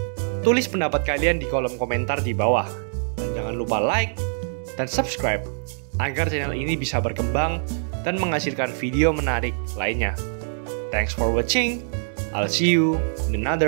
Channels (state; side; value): silent; left; digital silence